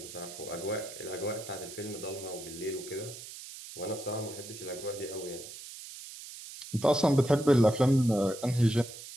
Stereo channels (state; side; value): noise; right; hiss, 13 dB below the sound